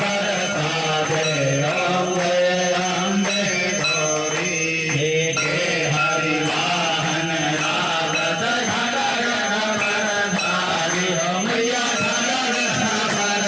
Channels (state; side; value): identical; both; correlation 1.00